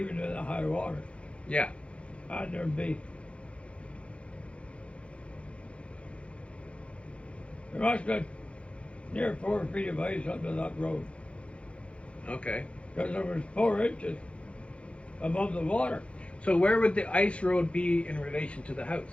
in the high water. Yeah. And there must have been near 4 feet of ice under that road, Okay. because there was 4 inches above the water. So where would the ice road be in relation to the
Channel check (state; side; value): late; right; 0.061 ms